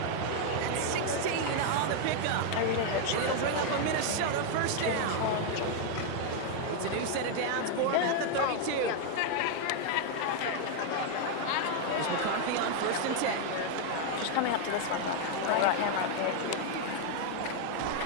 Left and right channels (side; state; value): both; different; correlation 0.00